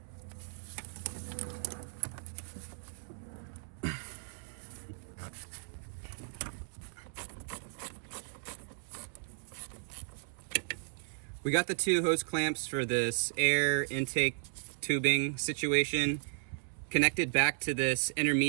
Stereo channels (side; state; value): left; silent; 54 dB below the other